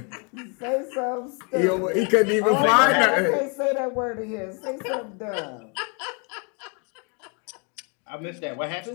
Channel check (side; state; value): right; quieter; 32.5 dB